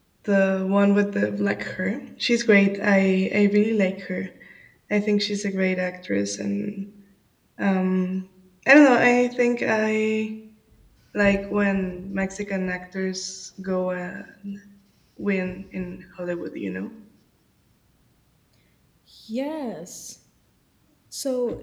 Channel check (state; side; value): identical; both; correlation 1.00